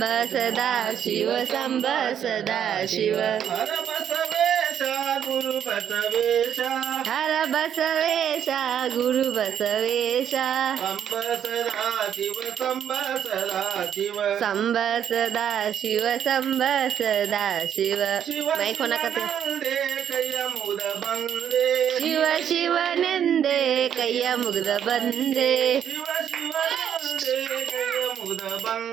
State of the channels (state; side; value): quieter; left; 9.2 dB